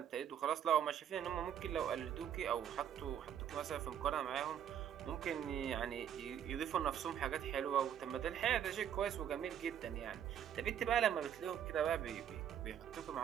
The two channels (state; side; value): quieter; left; 9.4 dB